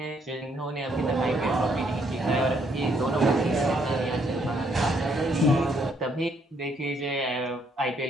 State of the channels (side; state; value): both; normal; correlation 0.70